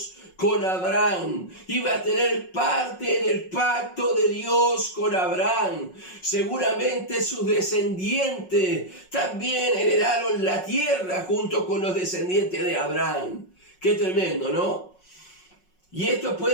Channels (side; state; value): right; late; 5.5 ms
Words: con Abraham. Iba a tener parte en el pacto de Dios con Abraham. Seguramente sus descendientes también heredaron la tierra junto con los descendientes de Abraham. Qué tremendo, ¿no? Y esto